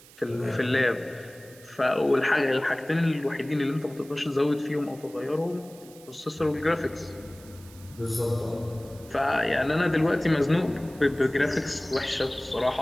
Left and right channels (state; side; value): noise; right; hiss, 22 dB below the sound